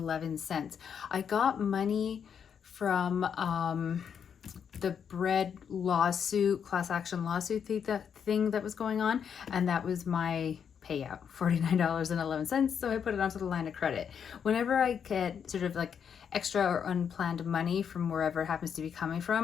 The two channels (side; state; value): right; quieter; 7.5 dB